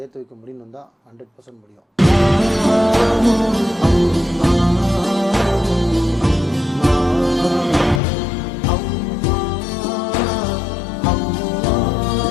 வைக்க முடியும்னு தான் 100% முடியும்.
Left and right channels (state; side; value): drops out; right; at 8.0 s